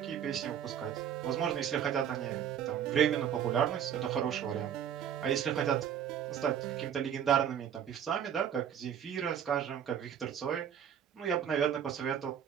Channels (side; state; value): left; quieter; 9.1 dB